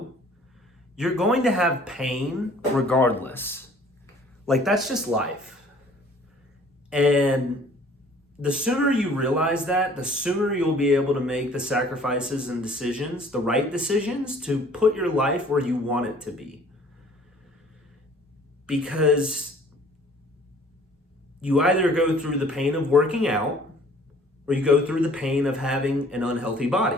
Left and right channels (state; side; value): normal; both; correlation 0.54